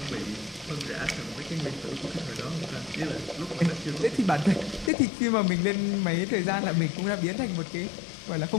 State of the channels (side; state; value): right; drops out; at 4.9 s